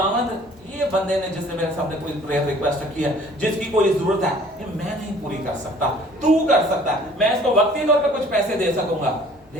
ये बंदे ने जिसने मेरे सामने कोई प्रेयर रिक्वेस्ट रखी है, जिसकी कोई जरूरत है, ये मैं नहीं पूरी कर सकता, तू कर सकता है। मैं इसको वक्ती तौर पे कुछ पैसे दे सकूंगा,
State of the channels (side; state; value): both; normal; correlation 0.53